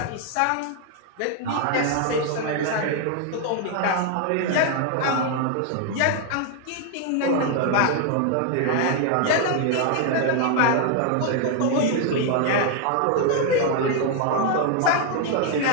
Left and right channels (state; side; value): different; both; correlation 0.00